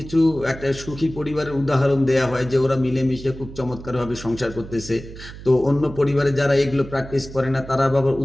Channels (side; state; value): right; noise; hum, 14 dB below the sound